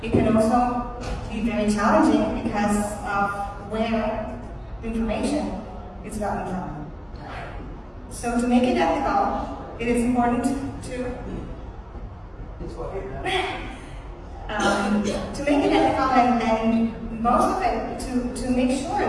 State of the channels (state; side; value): identical; both; correlation 1.00